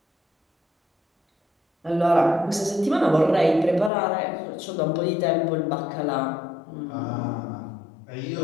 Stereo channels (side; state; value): right; drops out; at 3.9 s